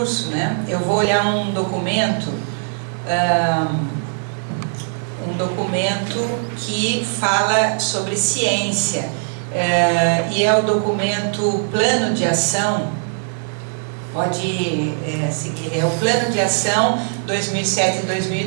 né, eu vou olhar um documento que fala sobre ciência, e é o documento Plano de Ação, pode seguir, é o Plano de Ação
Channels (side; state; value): left; silent; digital silence